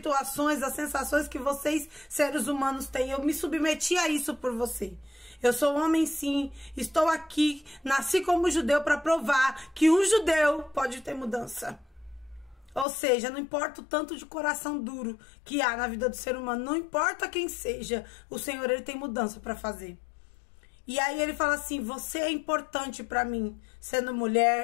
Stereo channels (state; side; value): drops out; right; at 12.9 s